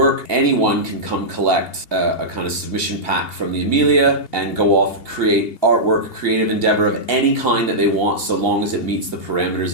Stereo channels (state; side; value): late; right; 2.7 ms